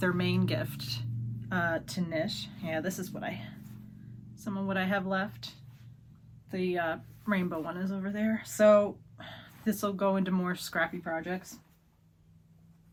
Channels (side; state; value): both; identical; correlation 1.00